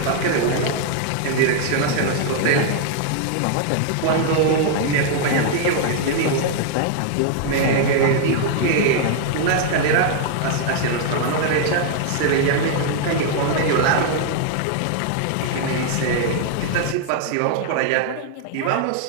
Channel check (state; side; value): different; both; correlation 0.00